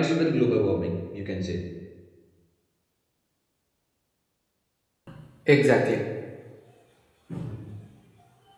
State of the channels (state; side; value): identical; both; correlation 1.00